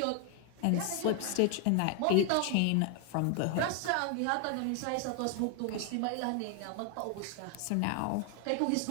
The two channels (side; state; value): both; different; correlation 0.00